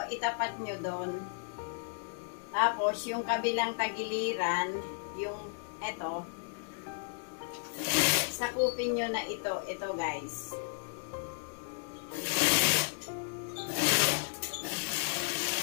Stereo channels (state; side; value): silent; right; digital silence